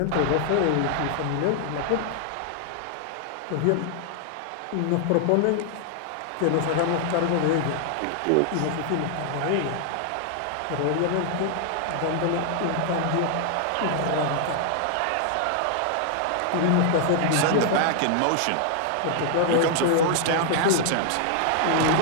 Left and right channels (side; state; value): both; different; correlation 0.00